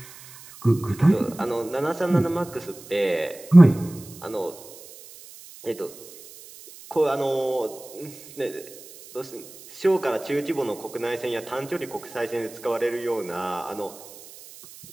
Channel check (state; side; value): noise; right; hiss, 19 dB below the sound